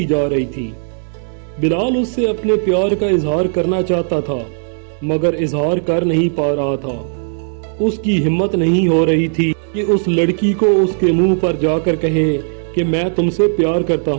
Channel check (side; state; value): left; silent; digital silence